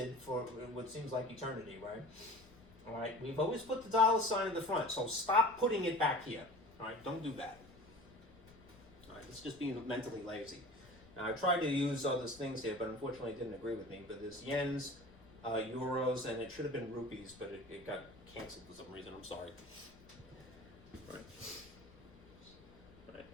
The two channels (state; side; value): noise; left; rumble, 23 dB below the sound